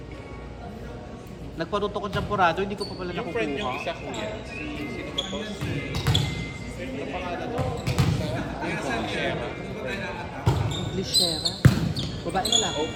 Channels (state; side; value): identical; both; correlation 1.00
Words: Nagparuto ko dyan purado, hindi ko pa pala Yung friend yung nakukuha. isa, kuya. Sino ba to? Ano pangalan mo? Yung Shera. Lishera. Babae na lang.